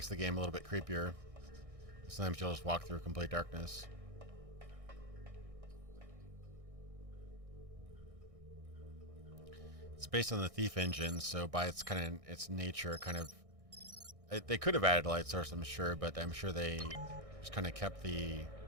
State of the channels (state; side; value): late; left; 1.6 ms